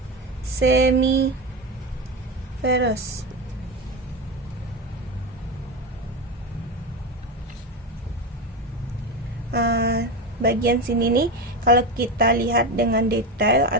semiferus. Bagian sini nih, kalau kita lihat dengan detail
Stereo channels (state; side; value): normal; both; correlation 0.18